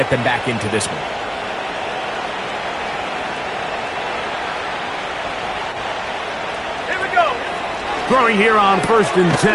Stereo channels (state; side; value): identical; both; correlation 1.00